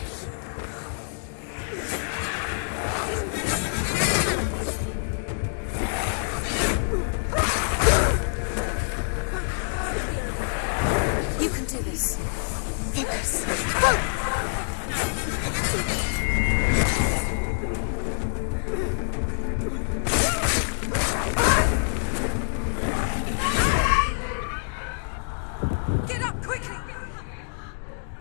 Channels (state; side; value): silent; right; digital silence